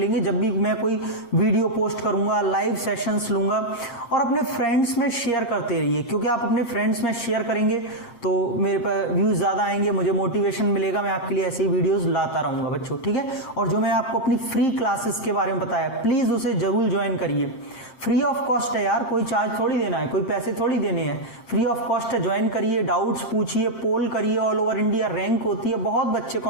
जब भी मैं कोई वीडियो पोस्ट करूंगा, लाइव सेशंस लूंगा। और अपने फ्रेंड्स में शेयर करते रहिए, क्योंकि आप अपने फ्रेंड्स में शेयर करेंगे तो मेरे पर व्यूज ज्यादा आएंगे, मुझे मोटिवेशन मिलेगा, मैं आपके लिए ऐसे ही वीडियोस लाता रहूंगा बच्चों, ठीक है। और जो मैं आपको अपनी फ्री क्लासेस के बारे में बताया प्लीज उसे जरूर ज्वाइन करिए, फ्री ऑफ कॉस्ट है यार, कोई चार्ज थोड़ी देना है, कोई पैसे थोड़ी देने हैं, फ्री ऑफ कॉस्ट है। ज्वाइन करिए, डाउट्स पूछिए, पोल करिए, ऑल ओवर इंडिया रैंक होती है, बहुत बच्चे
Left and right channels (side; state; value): right; late; 8.6 ms